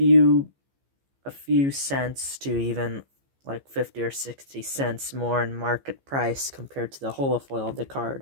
cents to even like 50 or 60 cents more in market price compared to the holofoil of the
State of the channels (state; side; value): late; left; 15 ms